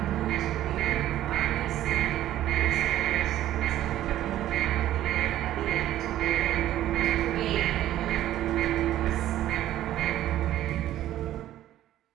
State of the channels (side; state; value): left; quieter; 13.1 dB